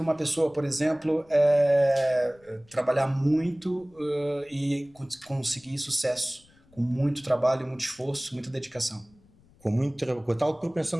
uma pessoa, por exemplo, trabalhar muito e conseguir sucesso com muito trabalho, muito esforço, muita dedicação? Com a tal propensão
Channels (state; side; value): noise; left; rumble, 30 dB below the sound